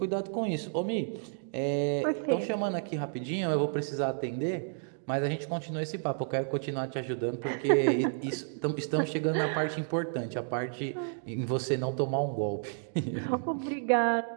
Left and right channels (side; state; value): left; silent; digital silence